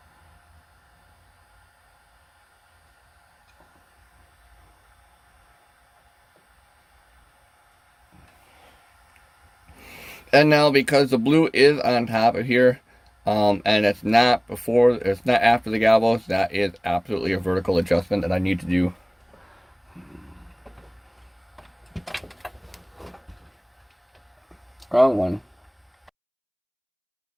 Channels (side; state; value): both; identical; correlation 1.00